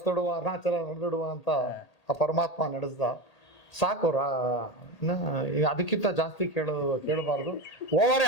ಅರುಣಾಚಲ ನಡೆದಿಡುವ ಅಂತ ಆ ಪರಮಾತ್ಮ ನಡೆಸ್ದ. ಸಾಕು, ಅದಕ್ಕಿಂತ ಜಾಸ್ತಿ ಕೇಳಬಾರ್ದು. ಓವರೇ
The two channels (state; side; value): late; right; 1.8 ms